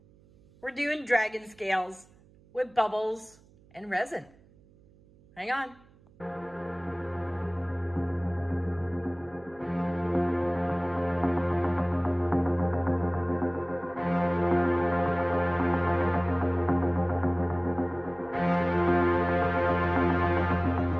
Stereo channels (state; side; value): noise; right; hum, 28 dB below the sound